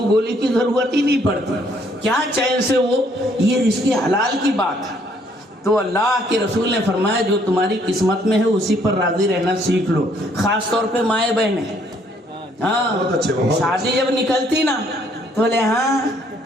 گولی کی ضرورت ہی نہیں پڑتی. کیا چین سے وہ، یہ رزق حلال کی بات ہے. تو اللہ کے رسول نے فرمایا جو تمہاری قسمت میں ہے اسی پر راضی رہنا سیکھ لو. خاص طور پہ مائیں بہنیں. ہاں شادی جب نکلتی نا تو بولے ہاں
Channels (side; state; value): both; normal; correlation 0.66